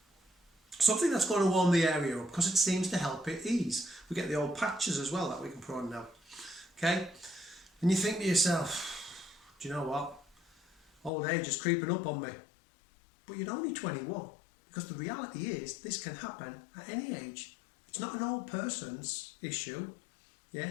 Something that's going to warm the area up because it seems to help it ease. We get the old patches as well that we can put on now. Okay? And you think to yourself, do you know what? Old age is creeping up on me. But you're only 21. Because the reality is, this can happen at any age. It's not an old person's issue. Yeah,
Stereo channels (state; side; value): drops out; right; at 11.1 s